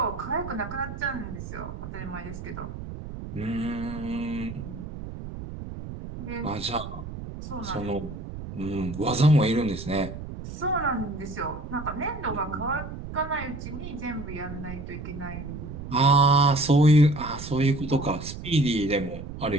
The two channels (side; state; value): right; noise; rumble, 10 dB below the sound